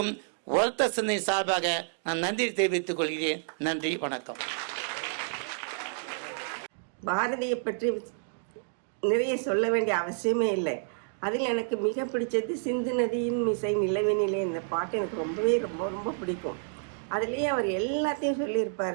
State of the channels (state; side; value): silent; left; digital silence